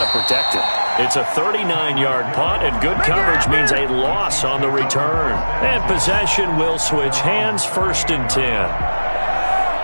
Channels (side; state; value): both; inverted; correlation -1.00